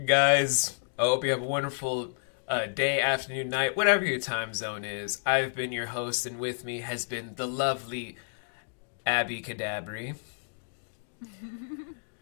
guys, I hope you have a wonderful day, afternoon, night, whatever your time zone is. I've been your host, and with me has been the lovely Abicadabri. It's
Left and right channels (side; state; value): right; silent; digital silence